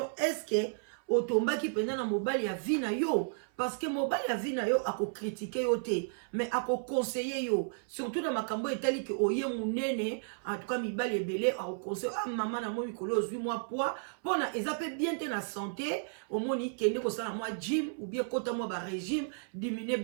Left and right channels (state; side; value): silent; left; 56 dB below the other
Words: est-ce que otomba ki penda na mobali ya vie na yo parce que mobali ya vie na yo ako critiquer yo te mais ako conseiller yo surtout na makambo etali ke oye munene en tout cas mibali ebele ako conseiller maman na moi mikolo 8 mois poids pona eza pe bien te na santé omoni kende ko sala moi gym ou bien kota moi ba régime diminuer